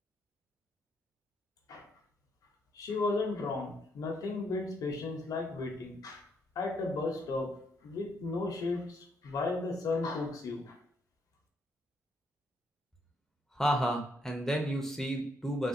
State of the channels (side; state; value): both; normal; correlation 0.74